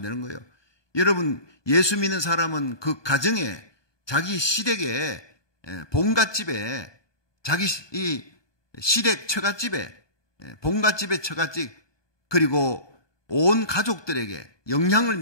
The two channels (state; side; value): late; right; 1.2 ms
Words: 거예요. 여러분, 예수 믿는 사람은 그 가정에, 자기 시댁에, 본갓집에, 자기 이 시댁 처갓집에, 본갓집의 처갓집, 그리고 온 가족들에게 영향을